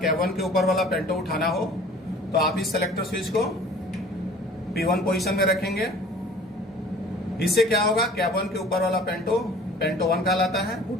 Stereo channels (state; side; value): normal; both; correlation 0.48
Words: कैब 1 के ऊपर वाला पेंटो उठाना हो तो आप इस सेलेक्टर स्विच को P1 पोजीशन में रखेंगे। इससे क्या होगा, कैब 1 के ऊपर वाला पेंटो 1 कहलाता है,